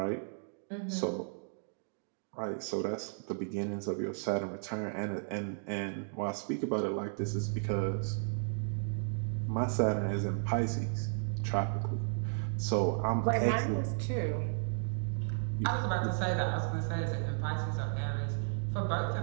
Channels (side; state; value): left; silent; digital silence